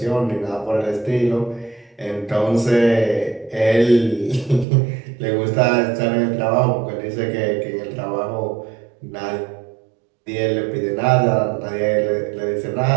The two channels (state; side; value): drops out; left; at 4.7 s